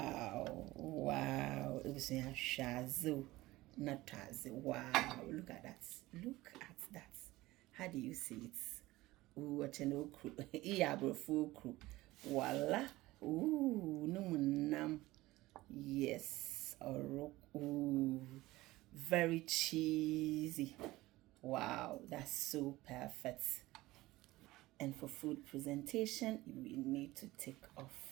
wow, it was a shazo, not as wow. Look at that, look at that. How do you see it? Ooh, a channel crew, yeah, bro, full crew. Voila, ooh, no munam. Yes, ooh, very cheesy. Wow, that's so perfect. And for food presentation, we need to take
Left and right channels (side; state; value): left; quieter; 18.5 dB